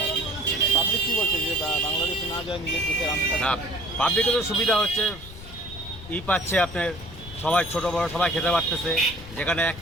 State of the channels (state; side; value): noise; left; rumble, 15 dB below the sound